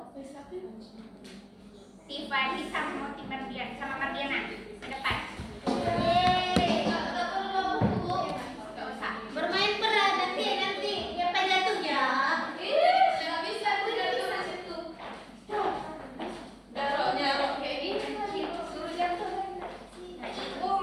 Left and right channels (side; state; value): both; identical; correlation 1.00